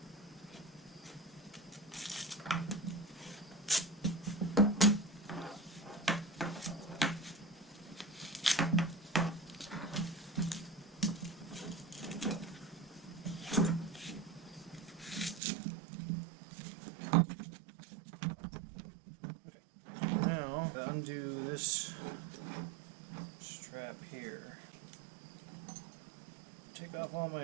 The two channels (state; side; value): drops out; left; at 15.4 s